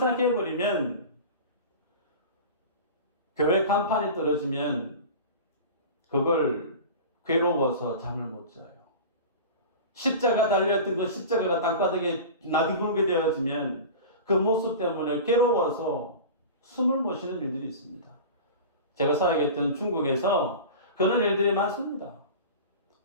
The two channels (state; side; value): inverted; both; correlation -0.33